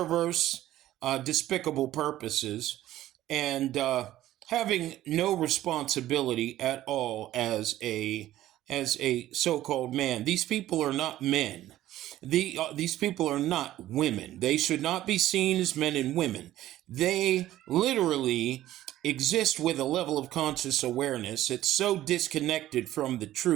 despicable purposes, and having no responsibility at all as a so-called man. These people are not men. These people are not women. They should not be seen as men and women. They literally exist with a level of conscious awareness. It's so disconnected from the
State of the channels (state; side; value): quieter; left; 14.1 dB